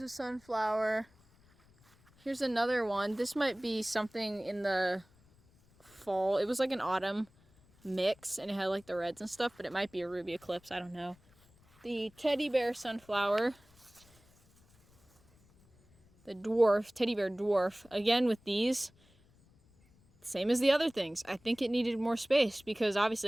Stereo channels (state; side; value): noise; left; rumble, 30 dB below the sound